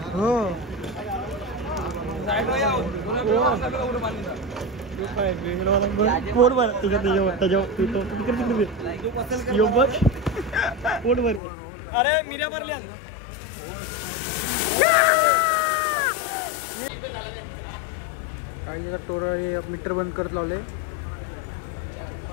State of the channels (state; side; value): drops out; right; at 11.4 s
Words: हो. पोट भर पोट भर. अरे मिऱ्या भरल्या. काही टोर मीटर बंद करत लावले.